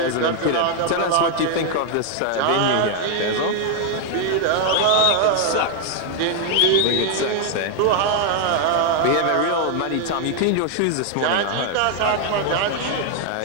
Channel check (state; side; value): different; both; correlation 0.00